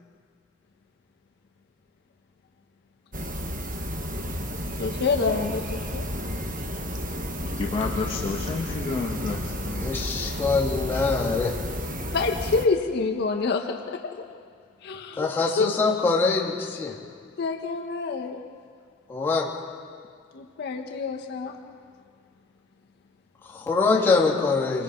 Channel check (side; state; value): right; quieter; 3.3 dB